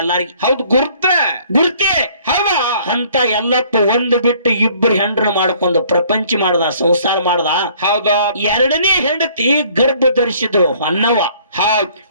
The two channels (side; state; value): both; inverted; correlation -0.58